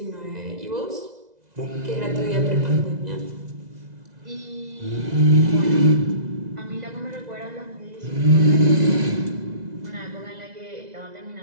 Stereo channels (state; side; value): late; left; 2.0 ms